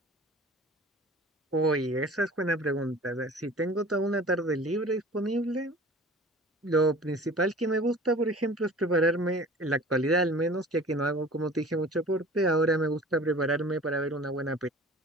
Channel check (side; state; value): both; normal; correlation 0.43